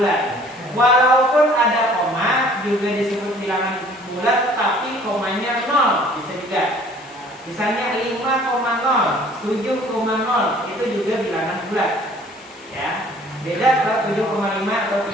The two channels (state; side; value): noise; left; hiss, 27 dB below the sound